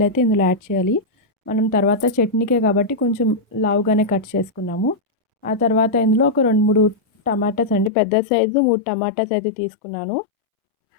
అయితే ఇందులో యాడ్ చేయాలి. మనం తర్వాత చట్నీకే కాబట్టి కొంచెం లావుగానే కట్ చేసుకున్నాము. ఆ తర్వాత ఇందులో ఒక 2-3 టమాటాస్ అండి, పెద్ద సైజు 3 టమాటాస్ అయితే తీసుకున్నాను.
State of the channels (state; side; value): drops out; right; at 7.9 s